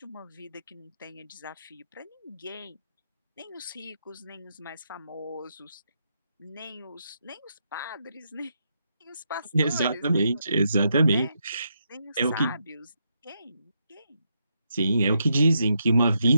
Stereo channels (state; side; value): inverted; both; correlation -0.81